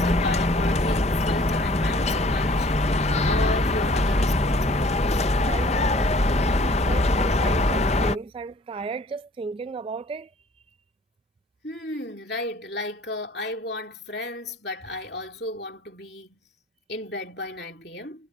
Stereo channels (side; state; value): both; normal; correlation 0.55